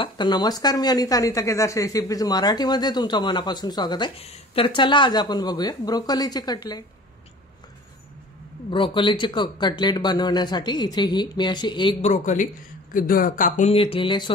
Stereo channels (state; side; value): normal; both; correlation 0.45